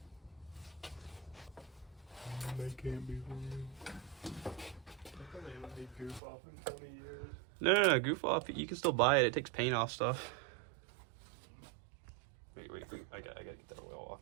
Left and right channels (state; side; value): drops out; left; at 6.2 s